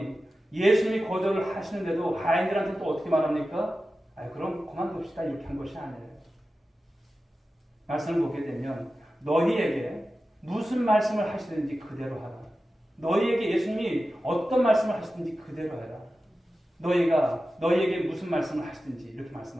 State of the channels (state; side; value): normal; both; correlation 0.93